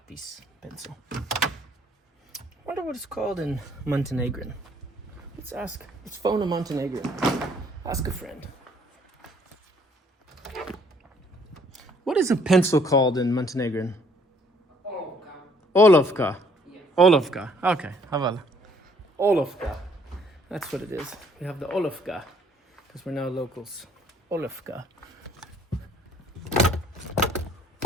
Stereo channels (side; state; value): both; normal; correlation 0.62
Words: pencil. Wonder what it's called in Montenegrin. Let's phone a Montenegrin. Ask a friend. What is a pencil called in Montenegrin? Olovka. Olovka. Okay, Havala. Olovka. That's what it is. We have the Olovka because we're now locals. Olovka.